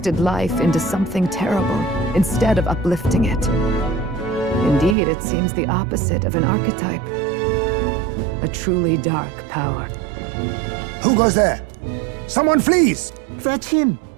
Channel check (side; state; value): left; drops out; at 5.0 s